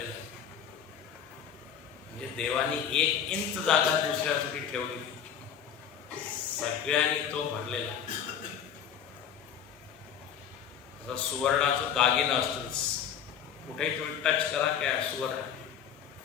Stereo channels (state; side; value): quieter; right; 8.3 dB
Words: आहे. म्हणजे देवानी 1 इंच जागा दुसऱ्यासाठी ठेवली, सगळ्यांनी तो भरलेला आहे. सुवर्णाचं दागिनं असतंच, कुठेही तुम्ही टच करा काय सुवर्ण,